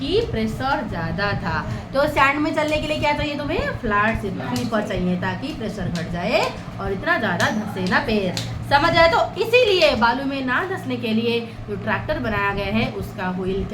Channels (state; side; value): identical; both; correlation 1.00